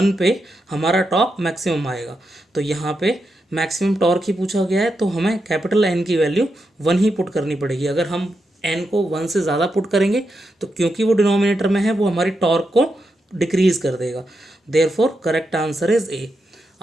पे हमारा टॉर्क मैक्सिमम आएगा। तो यहाँ पे मैक्सिमम टॉर्क ही पूछा गया है, तो हमें कैपिटल N की वैल्यू 1 ही पुट करनी पड़ेगी। अगर हम n को 1 से ज़्यादा पुट करेंगे तो क्योंकि वो डिनोमिनेटर में है, वो हमारी टॉर्क को डिक्रीज कर देगा। Therefore correct answer is A.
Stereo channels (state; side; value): normal; both; correlation 0.85